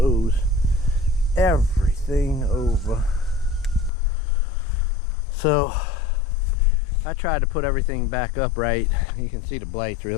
everything over. So I tried to put everything back up right. You can see the blights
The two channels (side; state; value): right; drops out; at 3.9 s